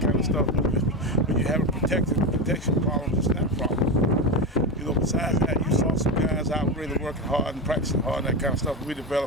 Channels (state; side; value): normal; both; correlation 0.17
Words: kind of stuff. When you have a protection problem, it's not a problem. Besides that, you saw some guys out really working hard and practicing hard and that kind of stuff. We're